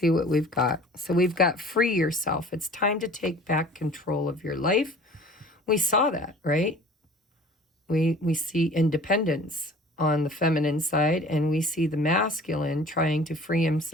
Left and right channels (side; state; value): both; normal; correlation 0.47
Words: what we've got. So we've got free yourself. It's time to take back control of your life. We saw that, right? We see independence on the feminine side, and we see the masculine trying to free